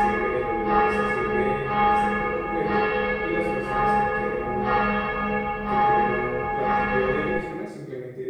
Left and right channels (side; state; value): both; identical; correlation 1.00